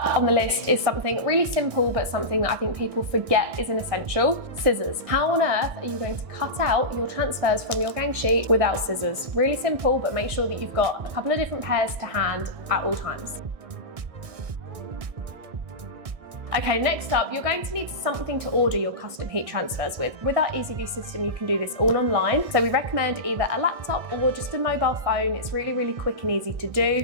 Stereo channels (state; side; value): late; left; 1.6 ms